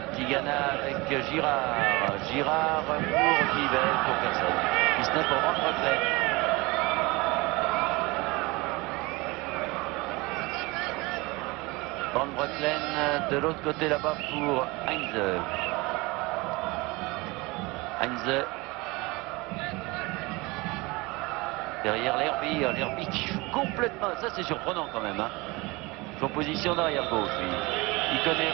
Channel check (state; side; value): quieter; left; 24.0 dB